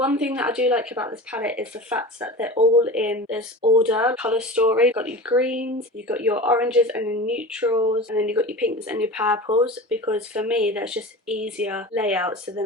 thing that I do like about this palette is the fact that they're all in this order, colour story. You've got your greens, you've got your oranges and your neutrals, and then you've got your pinks and your purples, because for me that's just easier layout, so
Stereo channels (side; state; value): both; normal; correlation 0.32